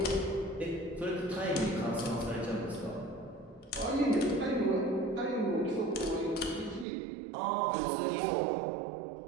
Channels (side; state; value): left; drops out; at 6.9 s